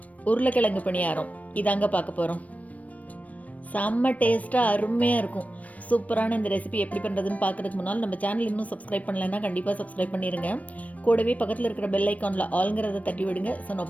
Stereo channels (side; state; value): right; late; 0.069 ms